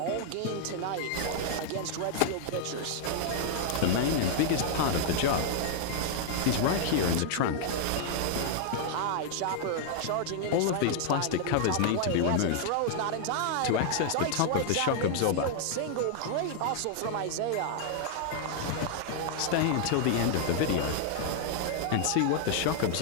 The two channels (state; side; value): different; both; correlation -0.01